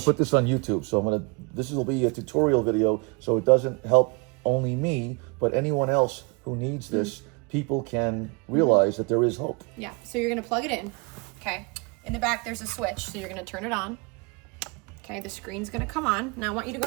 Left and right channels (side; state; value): left; quieter; 31.2 dB